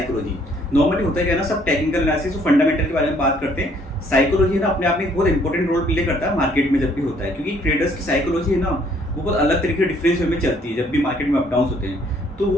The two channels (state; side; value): normal; both; correlation 0.63